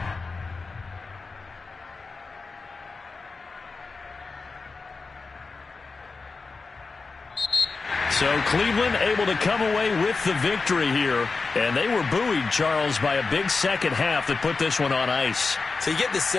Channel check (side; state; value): right; quieter; 4.2 dB